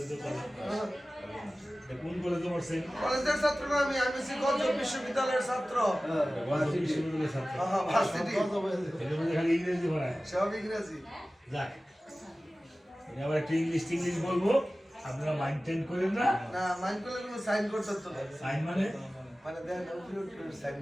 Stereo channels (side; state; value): both; normal; correlation 0.96